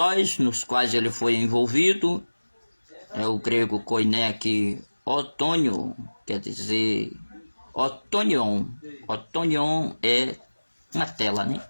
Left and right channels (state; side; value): inverted; both; correlation -1.00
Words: nos quais ele foi envolvido. É o grego koiné aqui, otônio, quer dizer otonion. Otonion é uma tela, né?